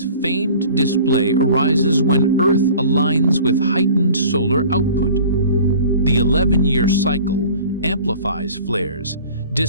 famed display arises when Earth aligns with heightened solar output. The 11-year cycle amplifies flares,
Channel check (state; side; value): inverted; both; correlation -0.45